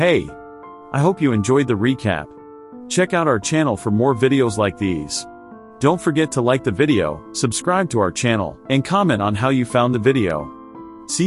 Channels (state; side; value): identical; both; correlation 1.00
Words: I hope you enjoyed the recap. Check out our channel for more videos like these. Don't forget to like the video, subscribe to our channel, and comment on how you found the video.